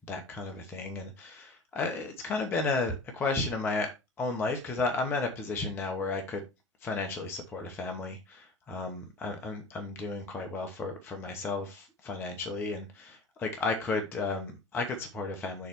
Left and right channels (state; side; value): quieter; right; 3.0 dB